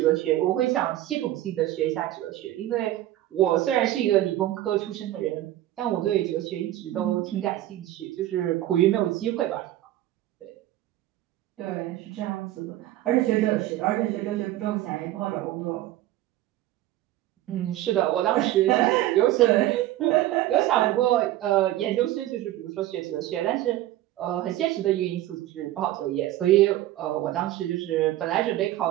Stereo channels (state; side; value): quieter; left; 14.5 dB